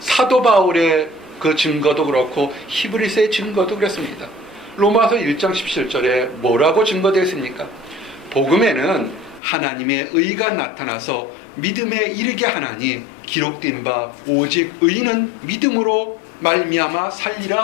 사도 바울의 그 증거도 그렇고 히브리서의 증거도 그렇습니다. 로마서 1장 17절에 뭐라고 증거되어 있습니까? 복음에는 하나님의 의가 나타나서 믿음에 이르게 하나니 기록된 바 오직 의인은 믿음으로 말미암아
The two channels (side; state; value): right; drops out; at 9.4 s